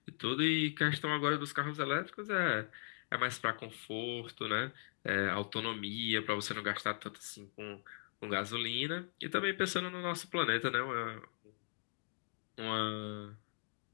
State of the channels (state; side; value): silent; right; 52 dB below the other